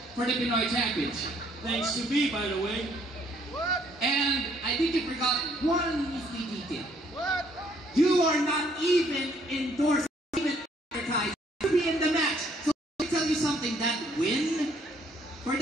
for the Pinoy Championship. Thanks to me, by the way. And I think you forgot one nifty detail. You are not even endorsed, even advertised to be in the match. So let me tell you something, that win for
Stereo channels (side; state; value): both; normal; correlation 0.66